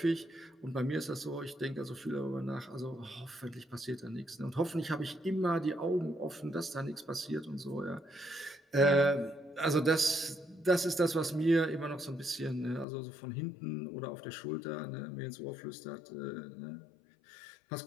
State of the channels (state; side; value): drops out; right; at 12.9 s